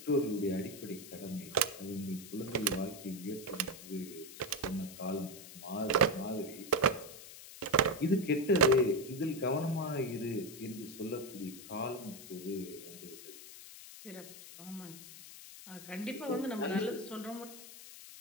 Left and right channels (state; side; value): noise; left; hiss, 15 dB below the sound